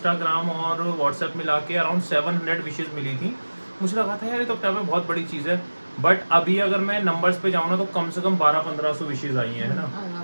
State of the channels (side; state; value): both; inverted; correlation -1.00